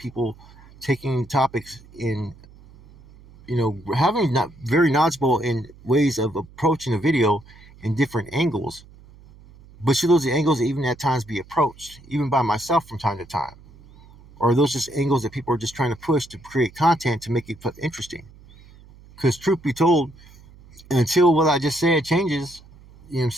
taking topics in, having not very knowledgeable in ways of approaching a video in different angles. But should those angles even at times be approached, even by myself from time to time? Or are those just angles that people are just trying to push to create content to make it interesting? Because truth be told, until what I just said changes, you know what I'm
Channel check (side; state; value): right; noise; hum, 23 dB below the sound